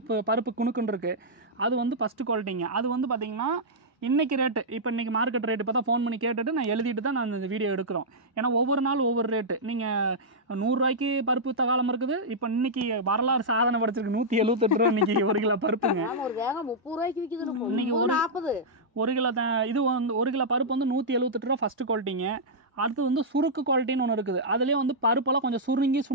பருப்பு குணுக்குன்னு இருக்குது. அது வந்து ஃபஸ்ட்டு குவாலிட்டிங்க. அது வந்து பார்த்தீங்கன்னா இன்றைக்கி ரேட்டு, இப்போ இன்றைக்கி மார்க்கெட் ரேட்டு இப்போ தான் ஃபோன் பண்ணி கேட்டுட்டு நான் எழுதிட்டு தான் நான் இந்த வீடியோ எடுக்கிறோம். ஏன்னா ஒவ்வொரு நாள் ஒவ்வொரு ரேட்டு. நீங்கள் 100 ரூபாய்க்கு பருப்பு தகாலம் இருக்குது. இப்போ இன்றைக்கி வரலாறு சாதனை படைச்சிருக்கு 178 ரூபா இன்றைக்கி 1 கிலோ பருப்புங்க. இன்றைக்கி 1 கிலோ இது வந்து 1 கிலோ பருப்பு வந்து 178 ரூபா ஃபஸ்ட்டு குவாலிட்டிங்க. அடுத்து வந்து சுருக்கு குவாலிட்டின்னு ஒன்று இருக்குது. அதுலேயே வந்து பருப்பெல்லாம் கொஞ்சம்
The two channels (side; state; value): both; normal; correlation -0.09